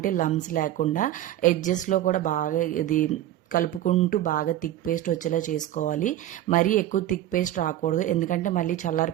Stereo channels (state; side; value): quieter; left; 13.2 dB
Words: లమ్స్ లేకుండా ఎడ్జెస్లో కూడా బాగా ఇది కలుపుకుంటూ బాగా థిక్ పేస్ట్ వచ్చేలా చేసుకోవాలి. మరీ ఎక్కువ థిక్ పేస్ట్ రాకూడదు, ఎందుకంటే మళ్ళీ చల్లారి